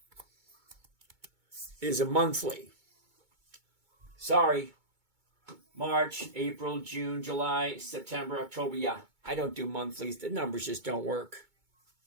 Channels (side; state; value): left; late; 2.2 ms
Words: is a monthly. Sorry. March, April, June, July, September, October. Yeah, I don't do monthlies. The numbers just don't work.